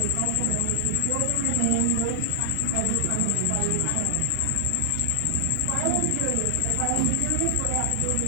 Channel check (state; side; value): different; both; correlation 0.00